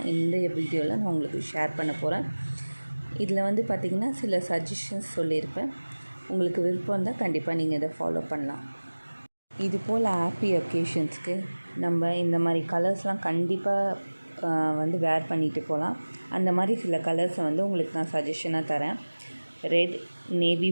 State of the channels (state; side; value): inverted; both; correlation -1.00